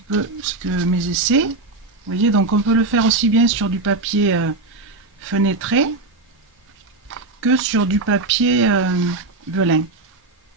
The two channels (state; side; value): quieter; left; 3.3 dB